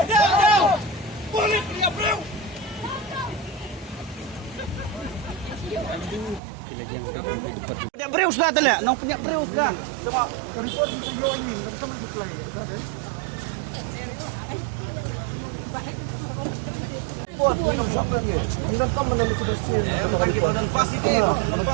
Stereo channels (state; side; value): drops out; left; at 6.4 s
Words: Punya berius dah tala, nak punya berius dah. Sama report sa iyo ini, kita mag-reply ka, okay? Buat minum sampai ni. Hingga kamu menemui sudah sini. Pas itu.